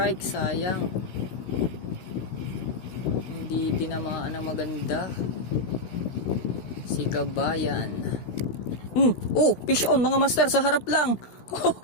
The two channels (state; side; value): late; right; 16 ms